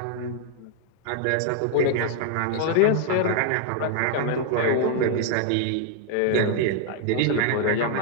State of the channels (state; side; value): different; both; correlation 0.00